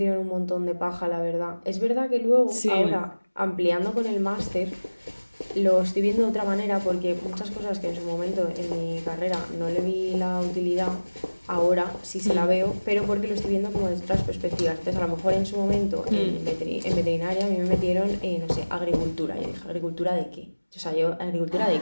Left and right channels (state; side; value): inverted; both; correlation -1.00